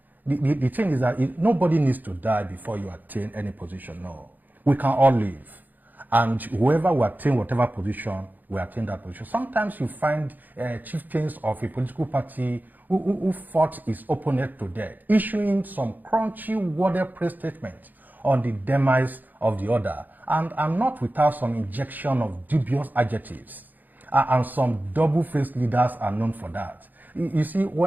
The thing is that nobody needs to die before you attain any position. No, we can all live, and whoever will attain whatever position, we attain that position. Sometimes you find chieftains of a political party who fought his opponent to death, issuing some crunchy worded press statement on the demise of the other, and not without some injection of dubious adjectives. And some double-faced leaders are known for that. You see,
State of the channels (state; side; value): late; left; 0.085 ms